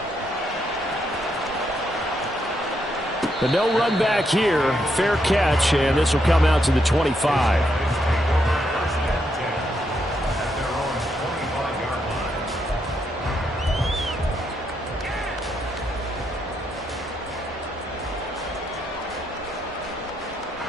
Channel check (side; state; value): both; normal; correlation 0.79